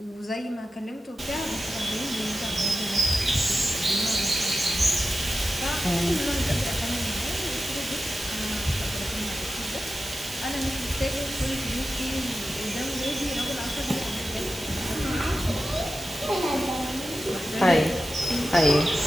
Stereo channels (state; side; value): normal; both; correlation 0.92